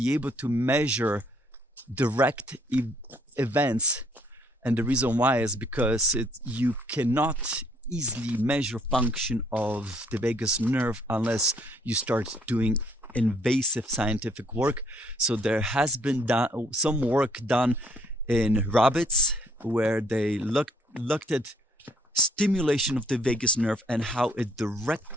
able to measure direct events, and the reason why is because you cannot easily measure function of the vagus nerve unless you start doing invasive scientific work. So there has been some work done in rabbits where they looked at stimulation of the vagus nerve and how it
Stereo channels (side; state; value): both; normal; correlation 0.64